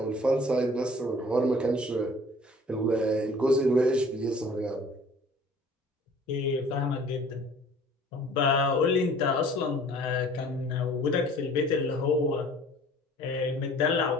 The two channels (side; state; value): both; normal; correlation 0.50